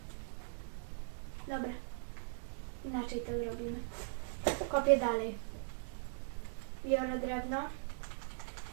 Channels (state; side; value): silent; left; digital silence